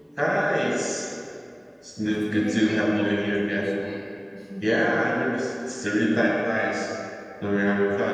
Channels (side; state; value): both; identical; correlation 1.00